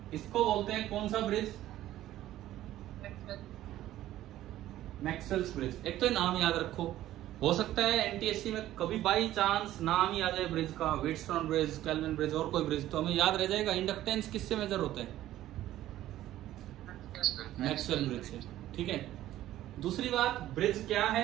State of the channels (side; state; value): left; quieter; 13.9 dB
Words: इसको बोलते हैं कौन सा ब्रिज? Maxwell's bridge. एक तो नाम याद रखो, हो सकता है एनटीएससी में कभी बाई चांस नाम ही आ जाए ब्रिज का, व्हीटस्टोन ब्रिज, केल्विन ब्रिज और कोई ब्रिज, तो हमें याद रह जाएगा इंडक्टेंस किससे मेजर होता है? मैक्सवेल ब्रिज से। ठीक है, दूसरी बात, ब्रिज क्या